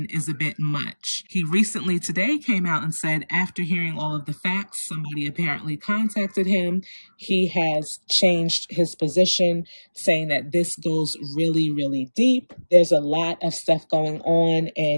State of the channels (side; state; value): both; inverted; correlation -1.00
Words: is a bit much. He recently today came out and said, after hearing all of the facts, somebody apparently contacted him. He has changed his position, saying that this goes really, really deep. There's a lot of stuff going on,